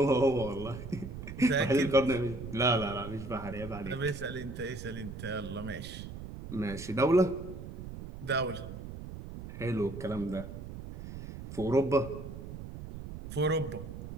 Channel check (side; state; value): right; noise; rumble, 10 dB below the sound